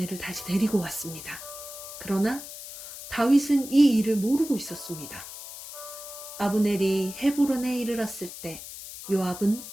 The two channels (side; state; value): left; noise; hiss, 12 dB below the sound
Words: 다시 데리고 왔습니다. 그러나 다윗은 이 일을 모르고 있었습니다. 아브넬이 헤브론에 이르렀을 때 요압은